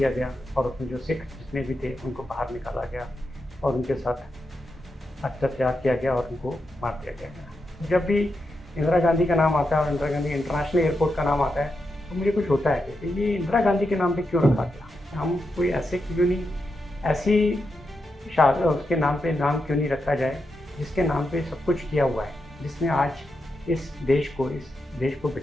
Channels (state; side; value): normal; both; correlation 0.86